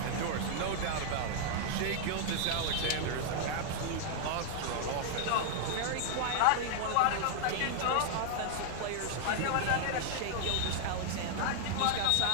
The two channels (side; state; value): both; different; correlation -0.01